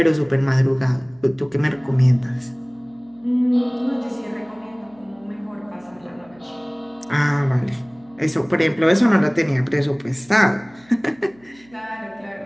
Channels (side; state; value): right; noise; hum, 29 dB below the sound